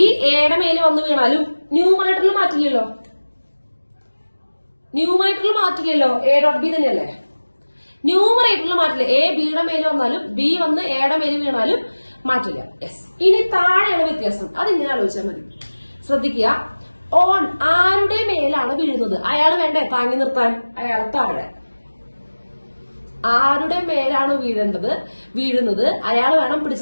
എയുടെ മേലെ വന്ന് വീണാലും ന്യൂമറേറ്ററിൽ മാറ്റില്ലല്ലോ. എ ഡോട്ട് ബി തന്നെയല്ലേ? ന്യൂമറേറ്ററിൽ മാറ്റില്ല. എ ബിയുടെ മേലെ വന്നാലും ബി വന്ന് എയുടെ മേലെ വീണാലും മാറ്റില്ല. യെസ്. ഇനി താഴെയാണ് വ്യത്യാസം. അതിങ്ങനെ ആലോചിച്ചാൽ മതി. ശ്രദ്ധിക്കുക. ഓൺ ആരുടെ മേലാണ് വീഴുന്നത്? അയാൾ വേണ്ടേ താങ്ങി നിർത്താൻ? അയാൾ താഴെ. ആരുടെ മേലാണ് വീഴുന്നത് അയാൾ വേണം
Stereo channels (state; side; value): inverted; both; correlation -1.00